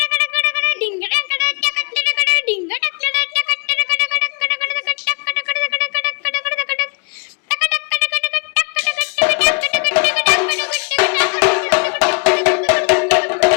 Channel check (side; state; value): right; quieter; 38.6 dB